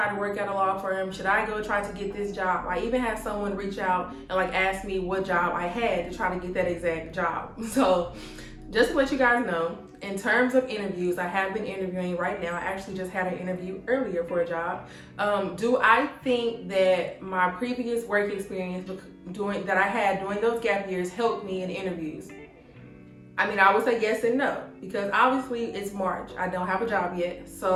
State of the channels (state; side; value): identical; both; correlation 1.00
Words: to work at a law firm? Should I go try to get this job? I even had someone reach out and ask me what job I had to try to get that exact job. So just to let you guys know, in terms of interviews, I have been interviewing right now. I actually just had an interview earlier for a job. Do I think that my previous work experience that I had during those gap years helped me in interviews? I mean, I would say yes and no, because obviously it's March. I don't have a job yet.